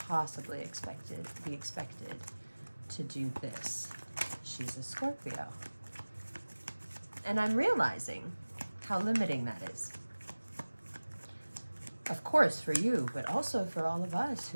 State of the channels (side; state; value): both; inverted; correlation -1.00